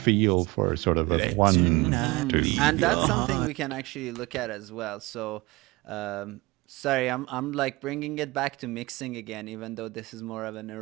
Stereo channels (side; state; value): left; quieter; 22.4 dB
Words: for sort of a Let one, tonight Mm-hmm. two. leave And that's your something heart. we can actually look at as well. So, sorry, I'm like bringing it back to mixing again, even though this is more of an No,